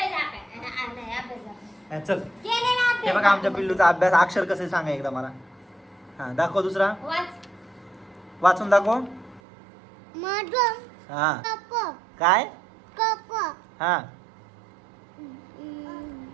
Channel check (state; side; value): drops out; left; at 9.4 s